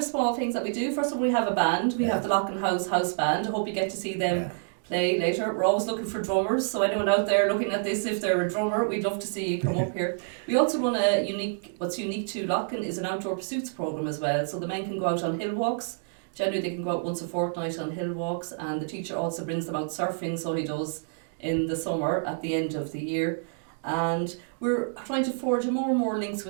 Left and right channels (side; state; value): left; silent; digital silence